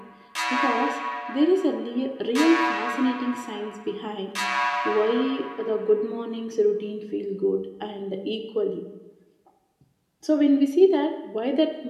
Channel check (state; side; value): identical; both; correlation 1.00